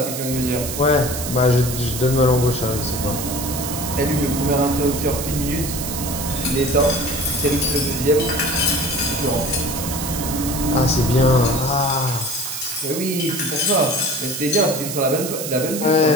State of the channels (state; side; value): noise; right; hiss, 6 dB below the sound